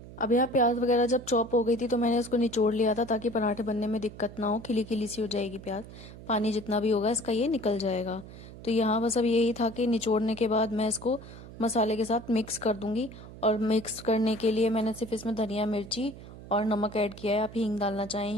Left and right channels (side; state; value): right; noise; hum, 16 dB below the sound